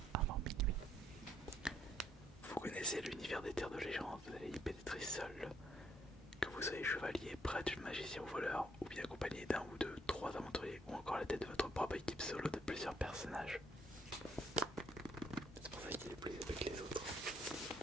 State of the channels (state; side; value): normal; both; correlation 0.70